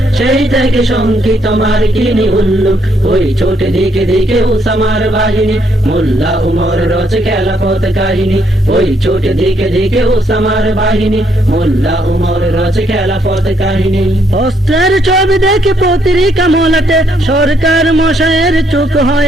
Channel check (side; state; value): both; normal; correlation 0.72